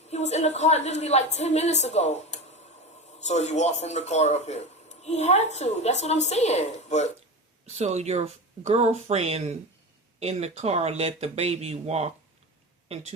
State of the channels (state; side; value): normal; both; correlation 0.25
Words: He was in the car literally like 10 minutes ago. So he walked from the car up here. He had to. That's what I'm saying. But So your girlfriend in the car let the baby walk